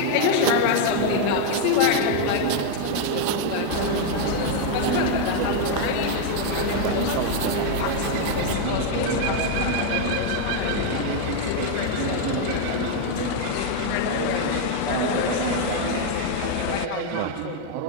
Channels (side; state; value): both; different; correlation 0.01